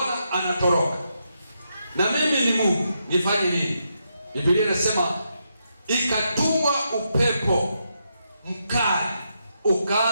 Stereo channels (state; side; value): inverted; both; correlation -0.82